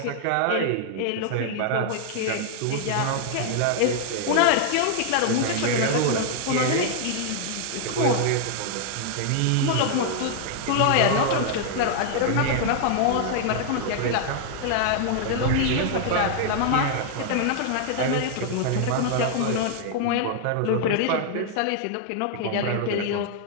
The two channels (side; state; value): both; different; correlation 0.00